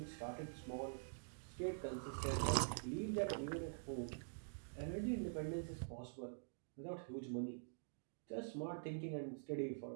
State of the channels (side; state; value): left; silent; digital silence